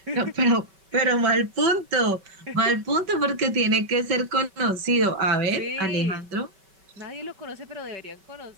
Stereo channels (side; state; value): left; late; 5.2 ms